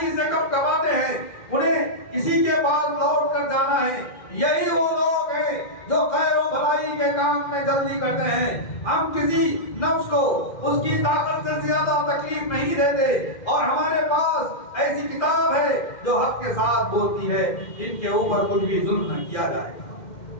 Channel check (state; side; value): late; right; 2.1 ms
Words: سے کب کباتے ہیں، انہیں کسی کے پاس لوٹ کر جانا ہے۔ یہی وہ لوگ ہیں جو خیر و بھلائی کے کام میں جلدی کرتے ہیں۔ ہم کسی نفس کو اس کی طاقت سے زیادہ تکلیف نہیں دیتے، اور ہمارے پاس ایسی کتاب ہے جو حق کے ساتھ بولتی ہے، جن کے اوپر کچھ بھی ظلم نہ کیا جائے گا۔